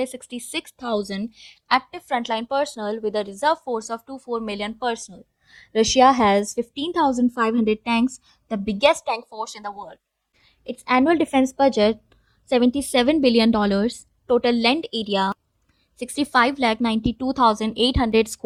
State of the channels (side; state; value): both; identical; correlation 1.00